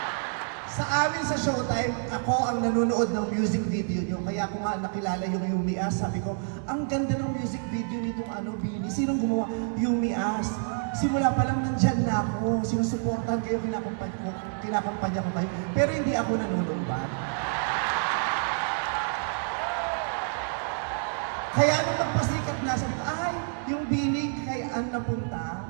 Sa amin sa Showtime, ako ang nanonood ng music video nyo. Kaya ako nga nakilala yung Yumi As. Sabi ko, ang ganda ng music video nitong Bini. Sinong gumawa? Yumi As. Simula pa lang nandyan na ako. Sinusuportahan kayo, kinakampanya ko kayo. Pero hindi ako nanunumbat. Kaya nung nagpasikat na, sabi ko, ay, yung Bini kay Ann napunta.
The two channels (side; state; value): left; silent; 59 dB below the other